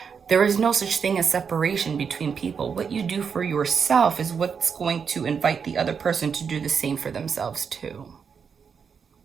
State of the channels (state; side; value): quieter; left; 6.4 dB